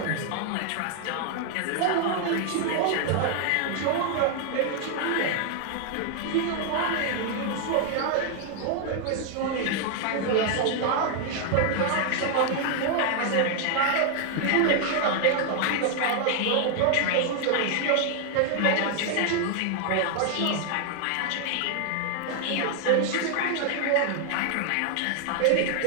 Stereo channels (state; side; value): different; both; correlation 0.00